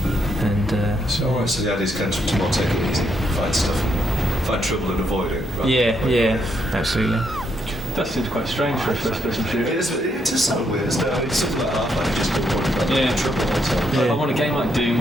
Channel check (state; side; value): normal; both; correlation 0.76